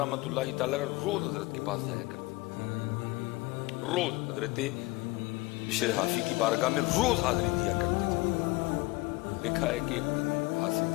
اللہ تعالی روز حضرت کے پاس جایا کرتے تھے، روز حضرت بشر حافی کی بارگاہ میں روز حاضری دیا کرتے تھے۔ لکھا ہے کہ ایک دن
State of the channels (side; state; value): right; quieter; 22.8 dB